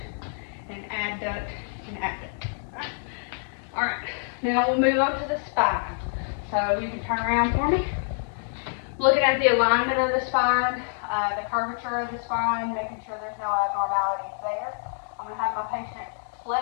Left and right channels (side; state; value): right; silent; digital silence